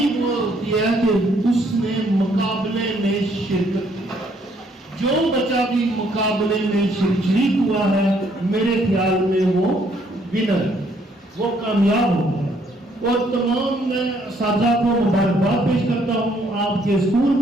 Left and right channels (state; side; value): normal; both; correlation 0.67